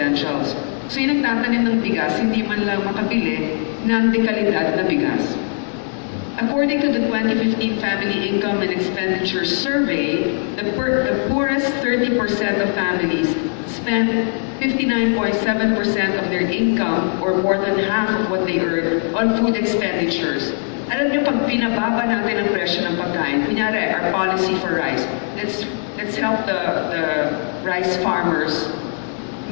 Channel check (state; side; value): silent; right; 55 dB below the other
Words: So yung nagtatanim ng bigas, hindi man lang makabili ng dekalidad na bigas. According to the 2015 Family Income and Expenditure Survey, the poorest 30% of families spend 59.7% of their income, or more than half of what they earn, on food expenditures. Alam niyo, pag pinababa natin ang presyo ng pagkain, kunyari, our policy for rice, let's help the rice farmers